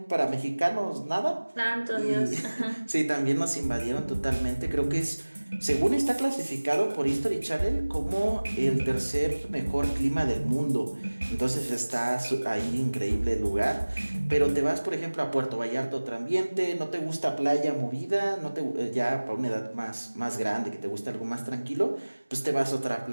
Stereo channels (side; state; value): both; inverted; correlation -1.00